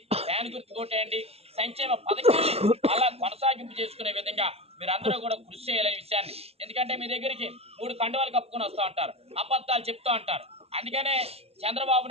ఫ్యాన్ గుర్తు కొట్టేయండి. సంక్షేమ పథకాన్ని అలా కొనసాగింపు చేసుకునే విధంగా మీరందరూ కూడా కృషి చేయాలనే విషయాన్ని. ఎందుకంటే మీ దగ్గరికి 3 కండువాలు కప్పుకొని వస్తూ ఉంటారు, అబద్ధాలు చెప్తూ ఉంటారు. అందుకనే చంద్రబాబు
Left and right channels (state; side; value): late; left; 0.30 ms